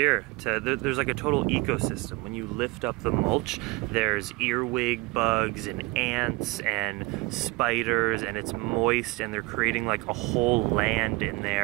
There's like a total ecosystem. When you lift up the mulch, there's earwig bugs and ants and spiders, and it's moist, and they're creating like a whole land in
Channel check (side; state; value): left; quieter; 24.2 dB